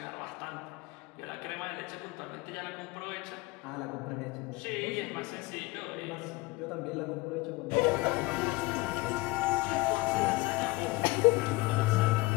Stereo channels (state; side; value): quieter; right; 22.5 dB